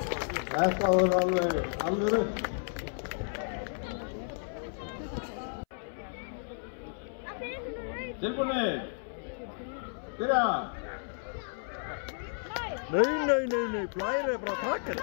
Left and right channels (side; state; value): right; silent; 56 dB below the other